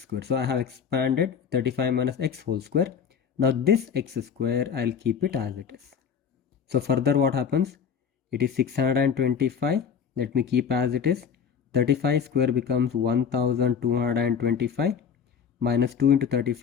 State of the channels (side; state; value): right; quieter; 7.0 dB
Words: So I have expanded 35 minus X whole square. Now this X square, I'll keep it as it is. So further what happens? It is 625. Let me keep as it is. 35 square becomes 1225 minus 2 into